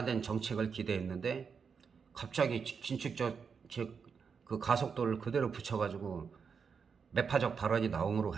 정책을 기대했는데 갑자기 긴축 정책 그 가속도를 그대로 붙여가지고 매파적 발언이 나옴으로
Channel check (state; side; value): quieter; left; 6.0 dB